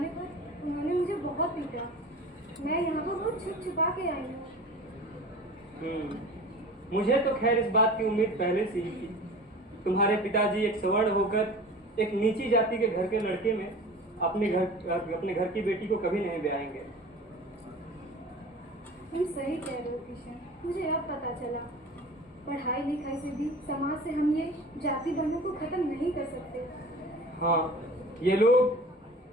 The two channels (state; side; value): normal; both; correlation 0.39